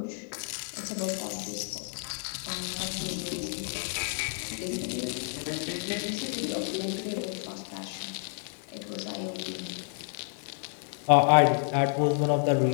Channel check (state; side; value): silent; right; 58 dB below the other